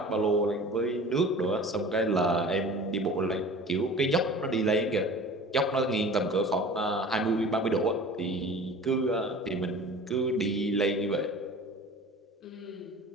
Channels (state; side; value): normal; both; correlation 0.41